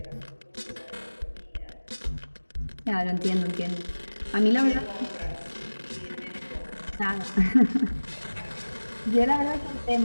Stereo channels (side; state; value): both; inverted; correlation -1.00